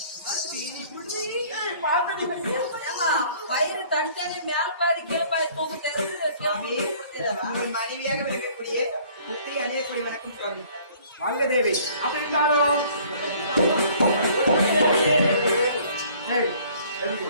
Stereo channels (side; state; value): both; inverted; correlation -0.55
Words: ஏமா பயிறு தனித்தனி மேல பாதி கீழே பாதி தூக்கு சுவாமி, உங்கள் மனைவியாக விளக்கக்கூடிய புத்திரி அணியக்கூடிய வணக்கம் சுவாமி. வாழ்க தேவி. அப்படி இருந்தாலும் ஏய், எழுந்து.